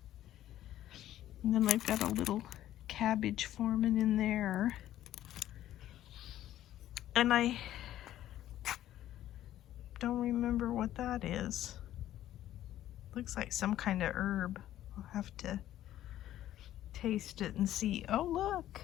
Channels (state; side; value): quieter; right; 12.9 dB